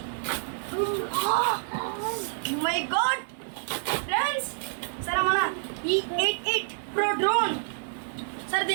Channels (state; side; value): silent; left; digital silence